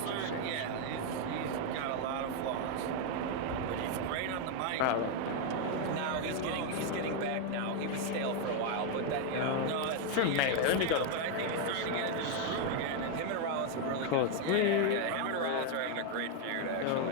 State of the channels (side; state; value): both; different; correlation 0.01